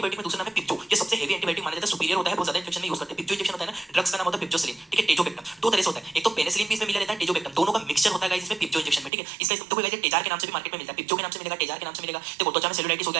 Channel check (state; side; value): drops out; left; at 9.1 s